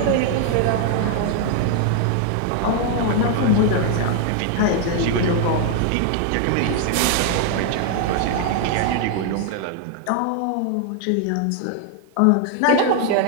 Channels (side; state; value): both; different; correlation 0.00